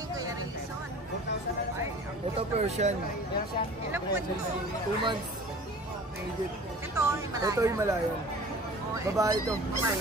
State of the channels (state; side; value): normal; both; correlation 0.43